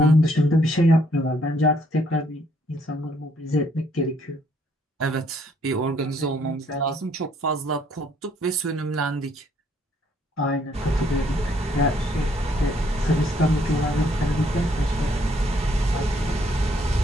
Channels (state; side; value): normal; both; correlation 0.67